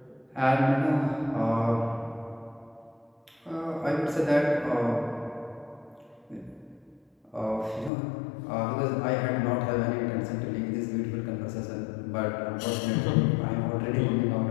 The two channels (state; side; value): drops out; right; at 7.9 s